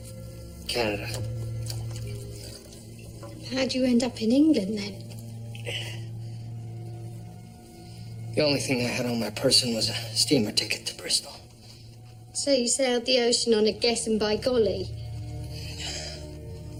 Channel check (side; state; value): both; identical; correlation 1.00